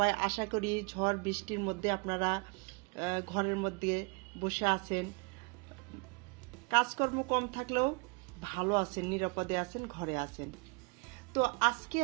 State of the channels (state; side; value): quieter; left; 31.5 dB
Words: আশা করি ঝড় বৃষ্টির মধ্যে আপনারা ঘরের মধ্যে বসে আছেন, কাজকর্ম কম থাকলেও ভালো আছেন, নিরাপদে আছেন, ঘরে আছেন। তো আজকে